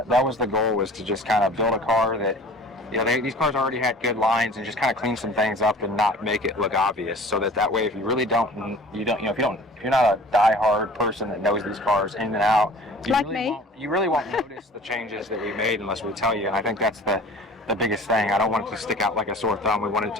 that was the goal, was to just kind of build a car that, you know, these cars already had good lines, and just kind of clean some things up and not make it look obvious, so that way if you really don't, if you're not a die-hard person that knows these cars in and out, you really won't notice the changes that we made unless we tell you. And I think that's the biggest thing. I don't want it to stick out like a sore thumb. We want it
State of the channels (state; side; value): normal; both; correlation 0.45